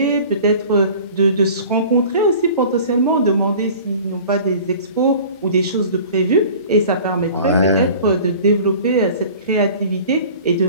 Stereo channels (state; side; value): inverted; both; correlation -0.44